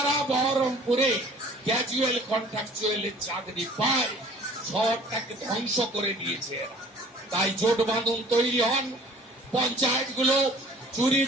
বহরমপুরে ক্যাজুয়াল কন্ট্রাকচুয়ালের চাকরি পায়। শহরটাকে ধ্বংস করে দিয়েছে এরা। তাই জোট বাঁধন তৈরি হন। পঞ্চায়েতগুলো চুরি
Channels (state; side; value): normal; both; correlation 0.51